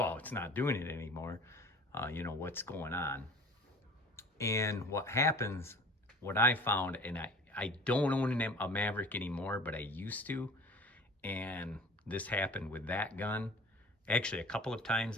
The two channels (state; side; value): normal; both; correlation 0.43